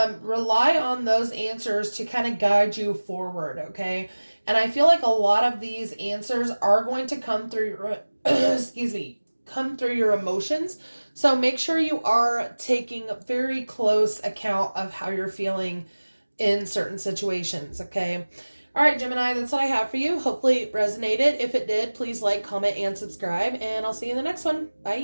rely on those answers to kind of guide you forward, okay? And I feel like a lot of these answers are going to come through your, come through your emotions. So make sure you are taking very close account of how you're feeling in certain situations, okay? All right, Gemini, that's what I have for you. Hopefully it resonated. If it did, please like, comment, and subscribe, and I'll see you in the next one.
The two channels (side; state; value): both; inverted; correlation -1.00